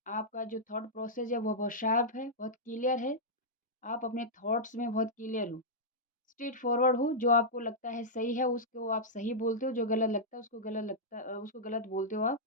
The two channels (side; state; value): both; normal; correlation -0.10